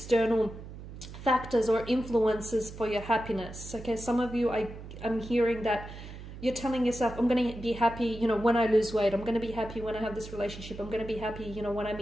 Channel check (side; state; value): right; noise; hum, 13 dB below the sound